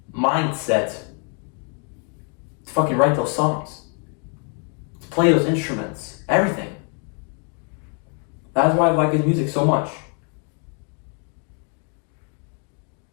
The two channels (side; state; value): right; quieter; 39.4 dB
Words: Mindset. To fucking write those songs. To play those instruments. Everything. That's why I like his music so much.